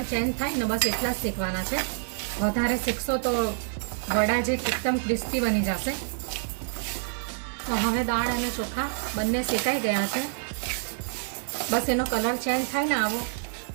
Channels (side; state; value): left; silent; digital silence